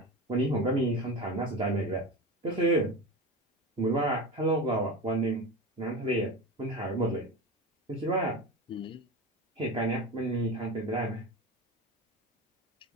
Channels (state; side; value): normal; both; correlation 0.26